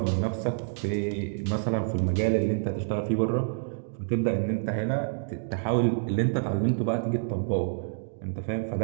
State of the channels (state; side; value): silent; left; digital silence